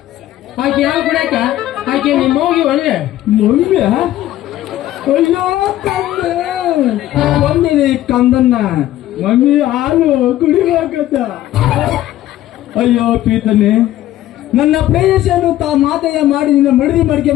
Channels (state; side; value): quieter; right; 13.9 dB